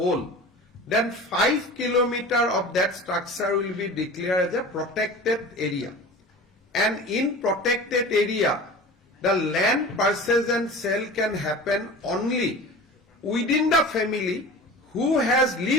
then 5 kilometers of that structure will be declared as a protected area. And in protected area, the land purchase and sale can happen only within the family who has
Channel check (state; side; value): normal; both; correlation 0.37